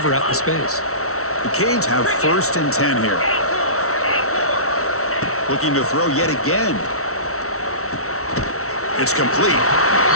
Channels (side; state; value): right; late; 0.63 ms